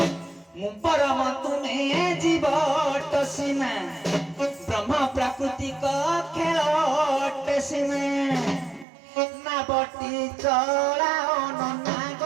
ମୁଁ ପରମ ତୁମେ ଜୀବ ସିନା ବ୍ରହ୍ମ ପ୍ରାକୃତିକ ଖେଳ ସିନା ନାବଟି ଚଳାଅ ନନା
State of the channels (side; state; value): left; drops out; at 8.8 s